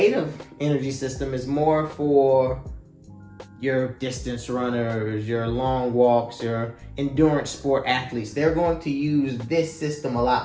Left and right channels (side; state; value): both; identical; correlation 1.00